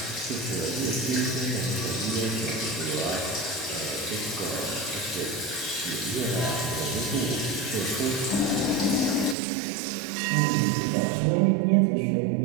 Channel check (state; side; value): drops out; left; at 9.3 s